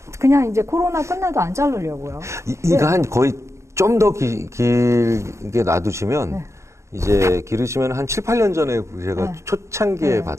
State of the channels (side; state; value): left; late; 0.14 ms